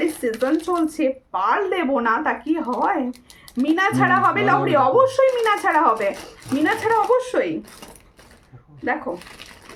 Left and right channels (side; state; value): both; identical; correlation 1.00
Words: সিজন চলছে, পার্ল দেবো না তা কি হয়? মিনা ছাড়া হবে লহরি, অবশ্যই মিনা ছাড়া হবে, মিনা ছাড়া অবশ্যই। দেখো